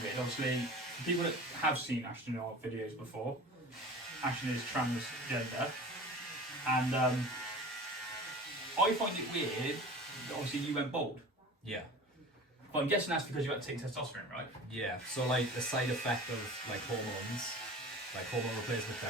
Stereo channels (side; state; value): both; normal; correlation 0.38